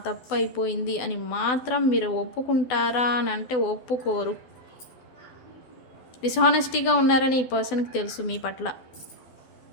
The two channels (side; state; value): right; late; 12 ms